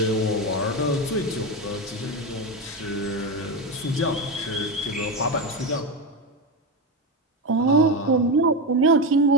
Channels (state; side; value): normal; both; correlation 0.14